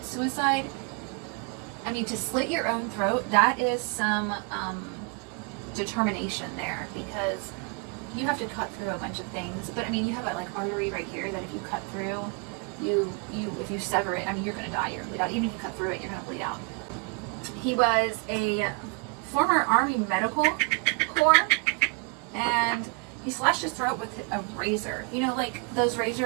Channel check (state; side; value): quieter; left; 33.3 dB